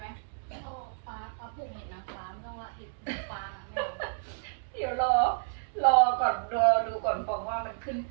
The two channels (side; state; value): left; silent; digital silence